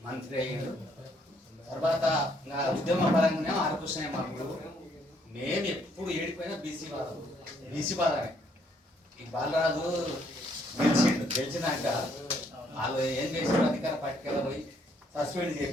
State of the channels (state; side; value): normal; both; correlation 0.69